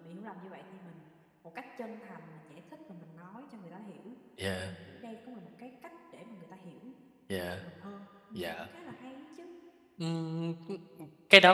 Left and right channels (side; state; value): both; identical; correlation 1.00